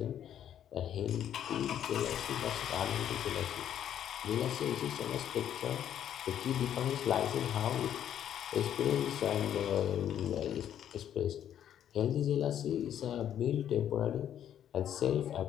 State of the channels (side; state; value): right; quieter; 10.2 dB